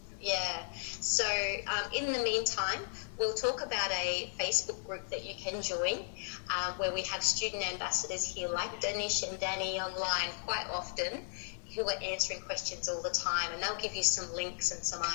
Yeah. So in the meantime, we'll talk about a Facebook group that you can join, where we have student ambassadors here like Danish and Danny online quite often, who are answering questions all the time, and they'll give you some links and some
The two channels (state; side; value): silent; right; digital silence